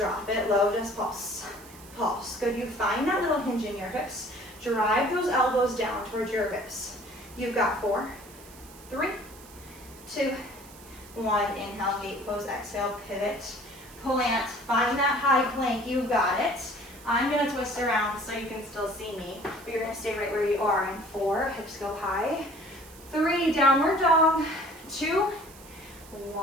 it low, just pulse. Pulse. Good, you find that little hinge in your hips. Drive those elbows down towards your ribs. You've got 4, 3, 2, 1. Inhale, gate pose, exhale, pivot, plant. Find that high plank, you've got it. I'm gonna twist around so you can still see me, but you're gonna stay right where you are. In 4, hips go high. 3, downward dog. 2,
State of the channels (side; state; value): right; noise; hiss, 20 dB below the sound